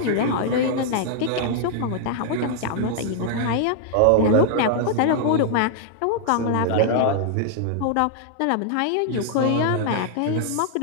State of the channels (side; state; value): both; different; correlation -0.01